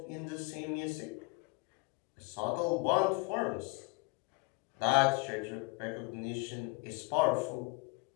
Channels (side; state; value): right; quieter; 29.4 dB